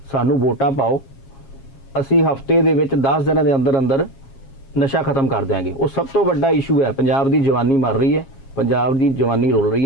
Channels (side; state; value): right; late; 7.4 ms